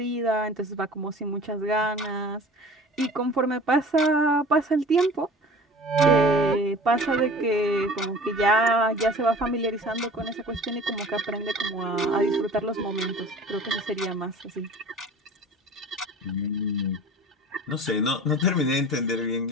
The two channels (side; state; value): both; normal; correlation 0.42